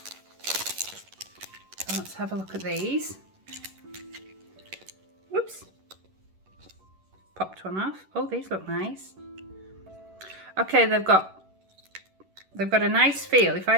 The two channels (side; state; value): left; late; 11 ms